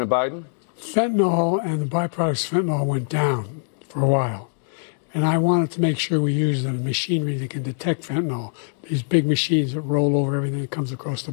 Biden? Fentanyl and the byproducts of fentanyl went down for a while. And I wanted to make sure we use the machinery that can detect fentanyl, these big machines that roll over everything that comes across the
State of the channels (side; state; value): right; silent; digital silence